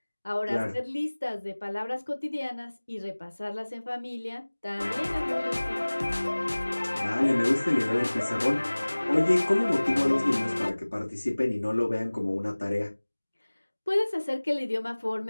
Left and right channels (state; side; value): inverted; both; correlation -1.00